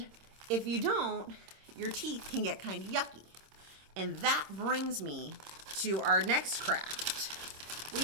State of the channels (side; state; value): left; late; 26 ms